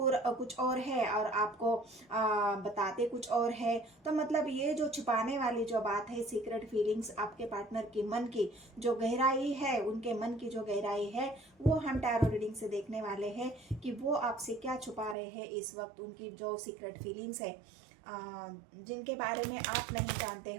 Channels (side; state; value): left; drops out; at 15.2 s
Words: और है और आपको बताते कुछ और है। तो मतलब ये जो छुपाने वाली जो बात है, सीक्रेट फीलिंग्स आपके पार्टनर की मन की जो गहराई है, उनके मन की जो गहराई है, वो हम टैरो रीडिंग से देखने वाले हैं कि वो आपसे क्या छुपा रहे हैं इस वक्त। उनकी जो सीक्रेट फीलिंग्स है जिनके बारे में आप नहीं जानते